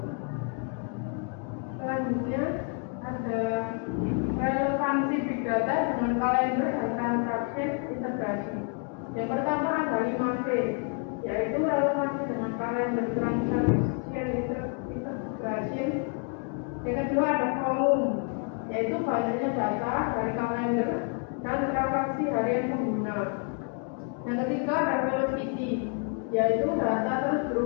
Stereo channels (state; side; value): quieter; right; 36.3 dB